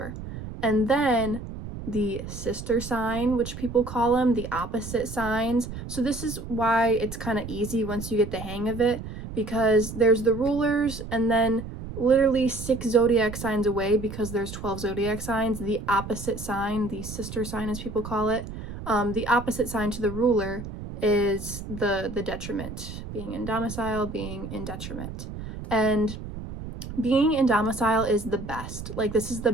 And then the sister sign, which people call them, the opposite signs. So this is why it's kind of easy once you get the hang of it, because there's the rulers and then literally 6 zodiac signs away, because there's 12 zodiac signs, the opposite sign, the sister sign as people call it, the opposite sign to the ruler is the detriment, being in domicile, being in detriment. And being in domicile is the best. Like, this is the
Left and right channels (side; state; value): right; noise; rumble, 10 dB below the sound